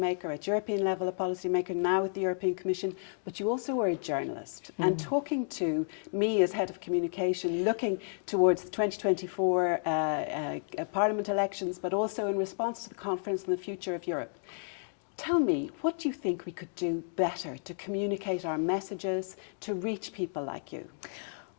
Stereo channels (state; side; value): silent; right; digital silence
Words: at European level a policymaker, now with the European Commission, but you also were a journalist. And talking to me as head of communication, looking towards the 2024 Parliament elections, but also in response to the conference on the future of Europe. Tell me, what do you think we could do better to communicate our messages, to reach people like you?